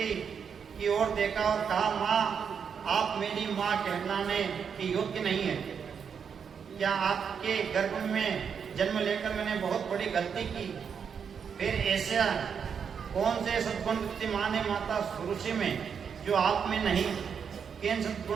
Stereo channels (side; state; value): left; quieter; 6.9 dB